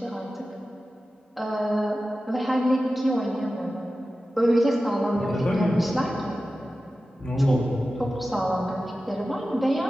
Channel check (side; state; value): both; normal; correlation 0.94